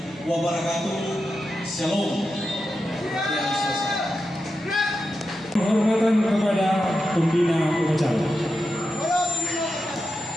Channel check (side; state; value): both; normal; correlation 0.89